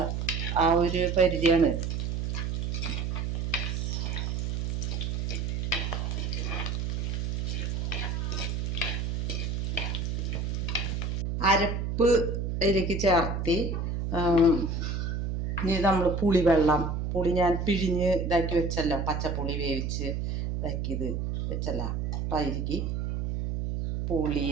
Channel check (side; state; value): right; noise; hum, 1 dB below the sound